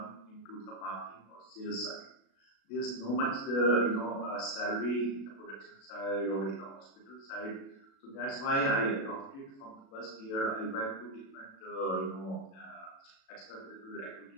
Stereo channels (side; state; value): right; late; 36 ms